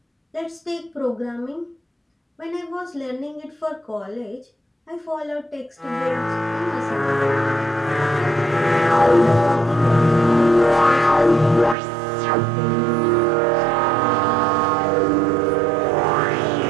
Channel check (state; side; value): drops out; left; at 11.8 s